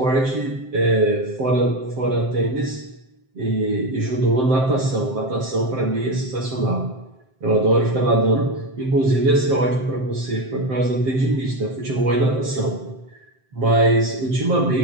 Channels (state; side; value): late; left; 7.6 ms